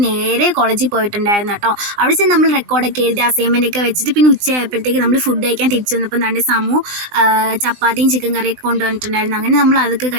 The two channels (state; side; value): late; left; 20 ms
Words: നേരെ കോളേജിൽ പോയിട്ടുണ്ടായിരുന്നു കേട്ടോ. അവിടെ ചെന്ന് നമ്മൾ റെക്കോർഡൊക്കെ എഴുതി അസൈൻമെൻ്റ് ഒക്കെ വെച്ചിട്ട് പിന്നെ ഉച്ചയായപ്പോഴത്തേക്ക് നമ്മൾ ഫുഡ് കഴിക്കാൻ തിരിച്ചു വന്നപ്പോൾ നല്ല ചപ്പാത്തിയും ചിക്കൻ കറിയൊക്കെ കൊണ്ടുവന്നിട്ടുണ്ടായിരുന്നു. അങ്ങനെ നമ്മൾ അതൊക്കെ